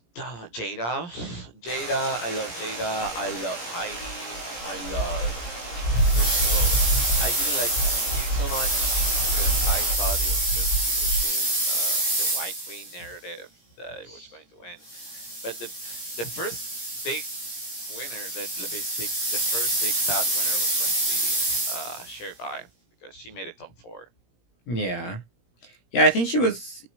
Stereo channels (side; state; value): right; late; 17 ms